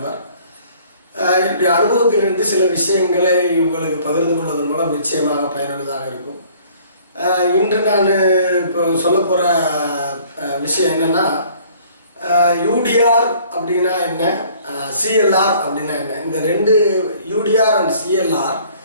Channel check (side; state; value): both; inverted; correlation -0.56